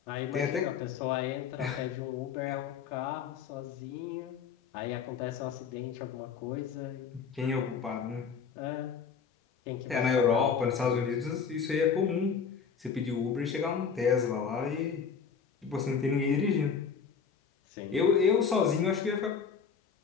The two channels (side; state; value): right; quieter; 6.4 dB